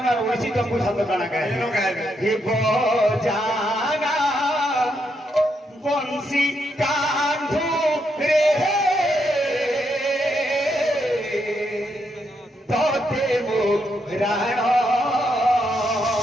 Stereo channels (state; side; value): normal; both; correlation 0.79